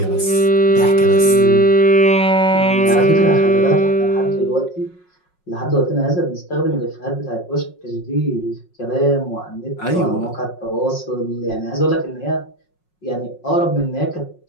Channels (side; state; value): right; late; 5.5 ms